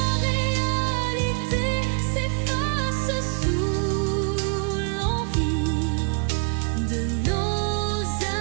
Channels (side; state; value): left; quieter; 37.0 dB